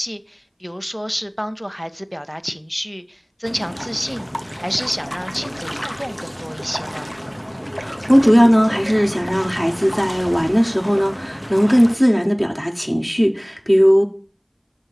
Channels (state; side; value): identical; both; correlation 1.00